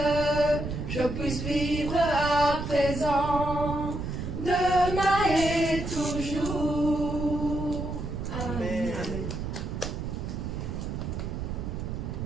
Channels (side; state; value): right; noise; rumble, 4 dB below the sound